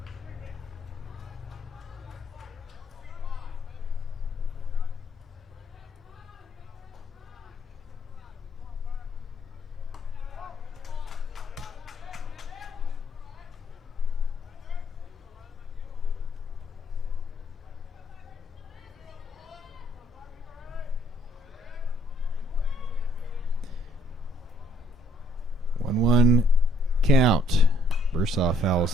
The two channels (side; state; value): both; normal; correlation 0.66